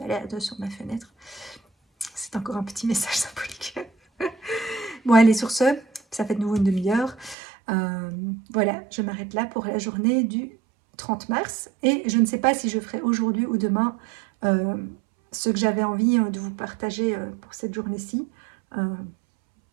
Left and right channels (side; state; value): left; drops out; at 7.4 s